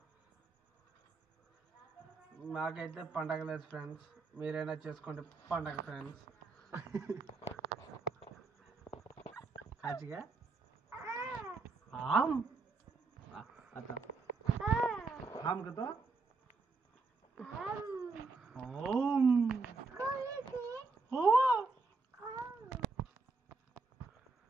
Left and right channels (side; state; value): left; quieter; 4.0 dB